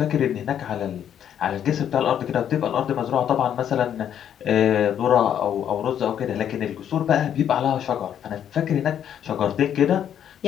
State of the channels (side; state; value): right; quieter; 9.6 dB